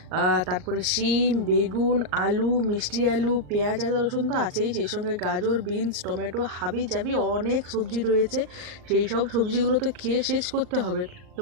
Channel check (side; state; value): left; late; 38 ms